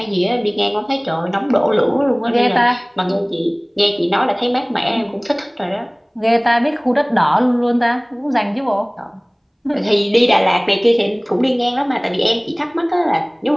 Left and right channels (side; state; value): both; identical; correlation 1.00